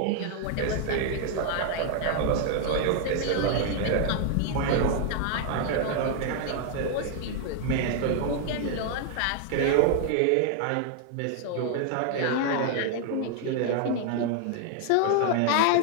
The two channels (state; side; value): different; both; correlation 0.00